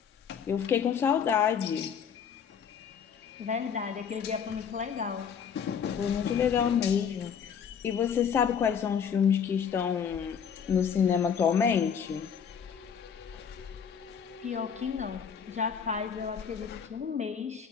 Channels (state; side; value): quieter; right; 7.4 dB